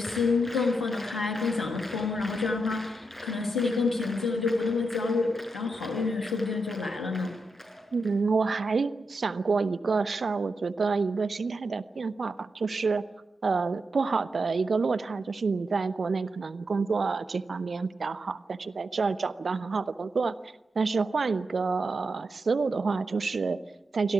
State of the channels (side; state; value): both; normal; correlation 0.86